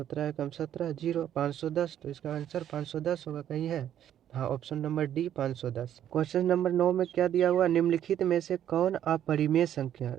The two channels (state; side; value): quieter; left; 10.5 dB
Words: एकम 17 0 510, तो इसका आंसर 510 होगा, कहीं है, हाँ option number D 510। Question number 9 में क्या दिया हुआ, निम्नलिखित में से कौन अपरिमेय संख्या,